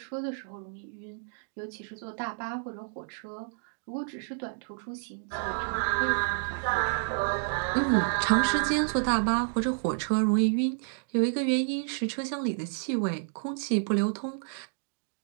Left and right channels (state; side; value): silent; left; digital silence